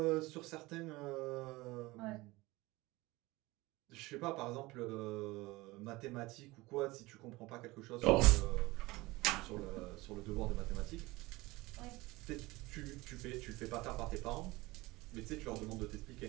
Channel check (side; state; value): left; quieter; 21.1 dB